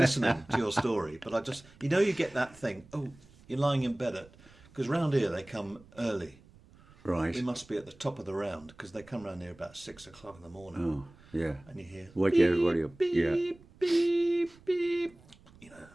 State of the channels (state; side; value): noise; right; rumble, 25 dB below the sound